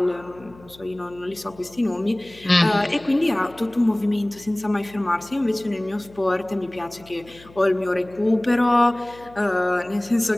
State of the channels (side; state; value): left; noise; hum, 23 dB below the sound